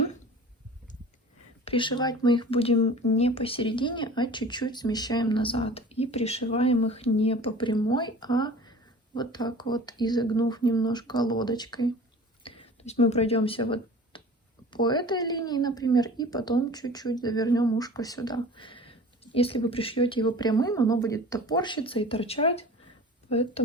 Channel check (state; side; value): normal; both; correlation 0.42